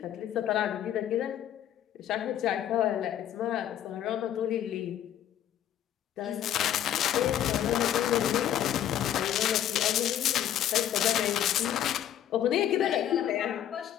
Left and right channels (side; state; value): right; quieter; 11.0 dB